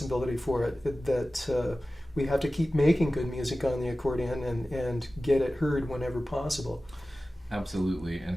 for it, that we have to keep making good music on the accordion and get it heard whenever possible. Absolutely,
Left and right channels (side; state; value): both; normal; correlation 0.96